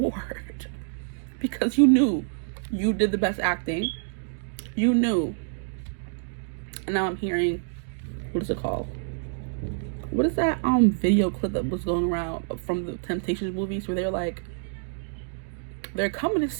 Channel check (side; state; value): left; silent; digital silence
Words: Because you knew you did the best acting. You knew. And now I'm hearing, what is it called? What is that video clip that was going around from the Temptations movies where they're like, they're coming to